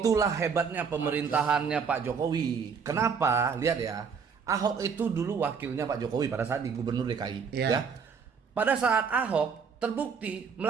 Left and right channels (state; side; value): quieter; left; 6.1 dB